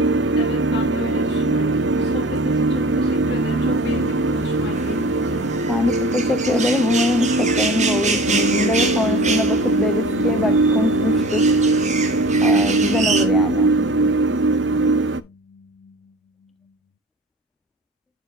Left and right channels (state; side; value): normal; both; correlation 0.41